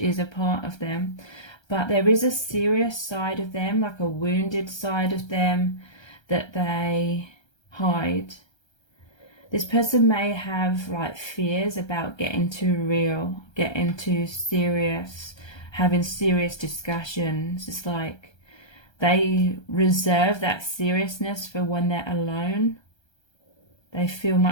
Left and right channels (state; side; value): late; right; 1.3 ms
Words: a part of them. But there is a serious side of them, like a wounded side of them, that they hide. This person may have like fears about getting too real, getting too serious, having serious discussions. It's like they reserve that seriousness for when they're alone. They feel